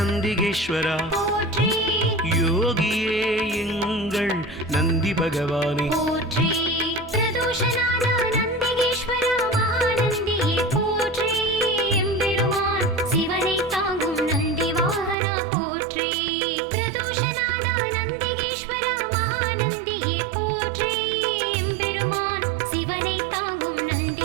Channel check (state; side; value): drops out; left; at 15.2 s